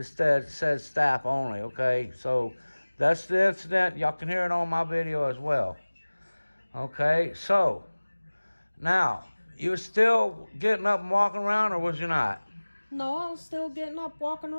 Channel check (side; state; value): both; inverted; correlation -1.00